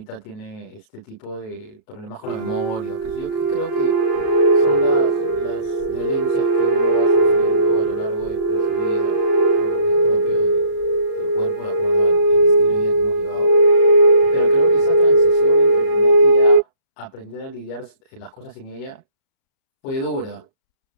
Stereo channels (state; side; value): late; right; 38 ms